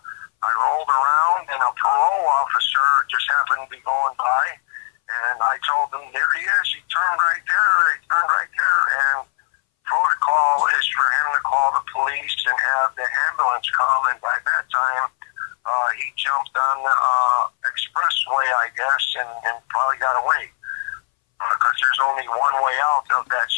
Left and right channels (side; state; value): right; silent; 62 dB below the other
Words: rolled around, and a parole officer just happened to be going by, and I told him, there he is. He turned right there. He turned right there. And protocol is for him to call the police and have the ambulance come. And by that time, he jumped on the expressway, I guess, and probably got away. Because there's only one way out of that